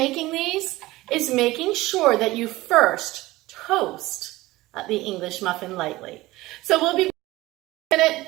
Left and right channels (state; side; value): quieter; left; 18.7 dB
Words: these is making sure that you first toast the English muffin lightly. So we'll be in a minute